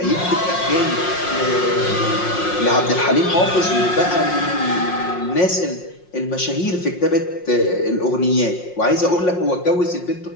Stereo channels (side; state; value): right; late; 5.6 ms